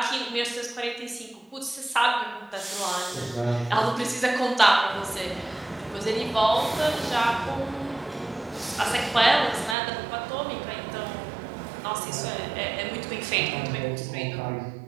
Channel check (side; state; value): left; drops out; at 9.8 s